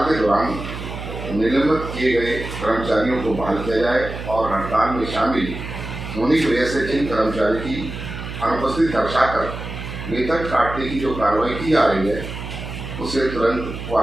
के दौरान निलंबित किए गए कर्मचारियों को बहाल किया जाए और हड़ताल में शामिल होने की वजह से जिन कर्मचारी की अनुपस्थिति दर्शाकर वेतन काटने की जो कार्रवाई की जा रही है उसे तुरंत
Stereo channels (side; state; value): right; noise; hum, 8 dB below the sound